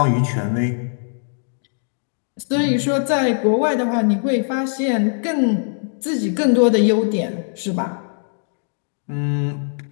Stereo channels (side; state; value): right; silent; digital silence